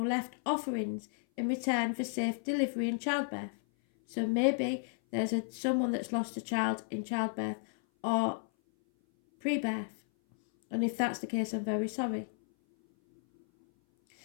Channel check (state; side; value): silent; right; 56 dB below the other